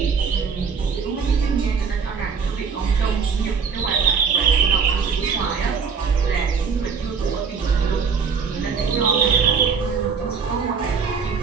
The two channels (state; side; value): quieter; left; 5.8 dB